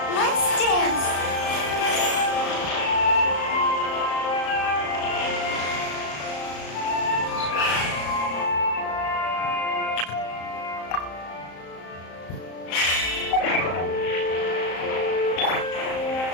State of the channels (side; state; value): right; late; 34 ms